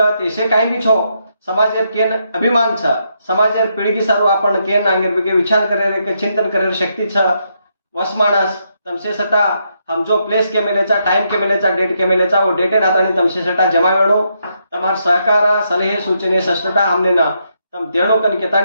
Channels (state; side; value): inverted; both; correlation -0.78